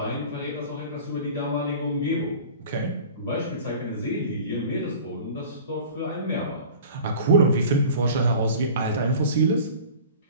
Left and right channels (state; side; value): inverted; both; correlation -0.41